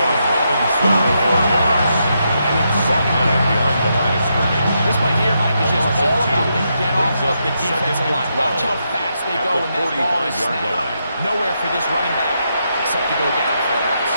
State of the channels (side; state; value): both; inverted; correlation -0.81